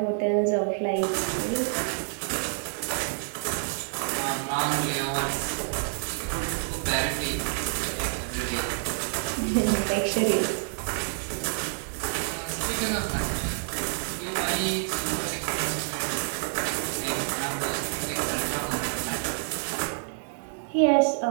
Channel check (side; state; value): left; silent; digital silence